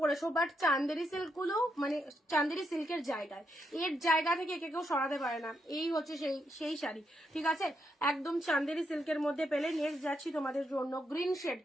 বাট চান্দেরি সিল্ক গুলো মানে চান্দেরি সিল্কের জায়গায়, এর জায়গা থেকে একে কেউ সরাতে পারে না। এই হচ্ছে সেই শাড়ি, ঠিক আছে, একদম চান্দেরি সিল্কের মধ্যে পেলে। নেক্সট যাচ্ছি তোমাদের জন্য গ্রিন শেড,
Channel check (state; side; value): normal; both; correlation 0.81